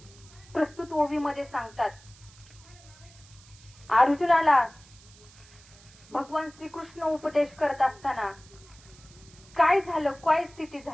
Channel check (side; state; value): right; noise; hiss, 24 dB below the sound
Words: प्रस्तुत ओवीमध्ये सांगतात, अर्जुनाला भगवान श्रीकृष्ण उपदेश करत असताना काय झालं, काय स्थिती